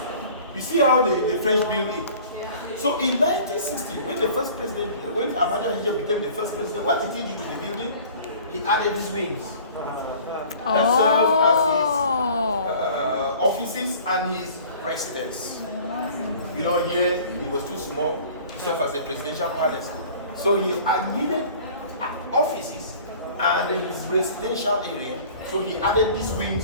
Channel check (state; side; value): inverted; both; correlation -0.47